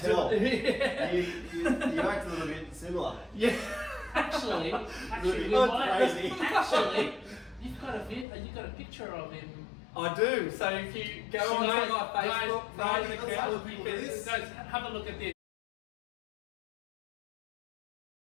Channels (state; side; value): drops out; right; at 8.2 s